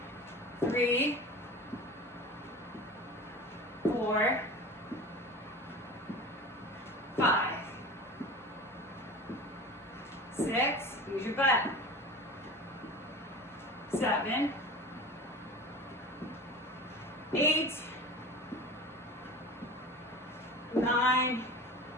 3, 4, 5, 6, use your butt. 7, 8, 9,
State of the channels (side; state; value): both; normal; correlation 0.34